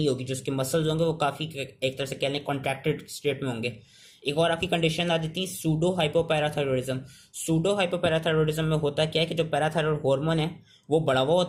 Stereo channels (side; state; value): both; identical; correlation 1.00